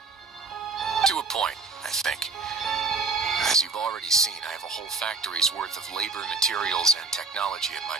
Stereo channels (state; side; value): quieter; left; 4.1 dB